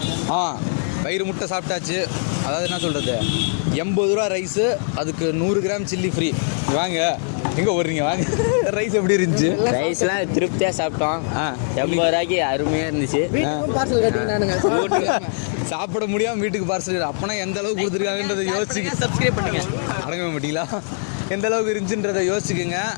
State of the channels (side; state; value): right; silent; digital silence